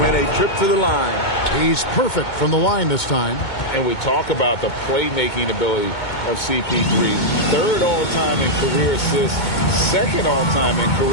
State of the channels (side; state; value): right; late; 2.2 ms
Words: a trip to the line. He's perfect from the line this time. And we talk about the playmaking ability of CP3. 3rd all-time in career assists, 2nd all-time in